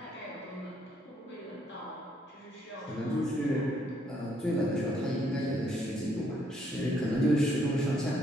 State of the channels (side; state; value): both; normal; correlation 0.70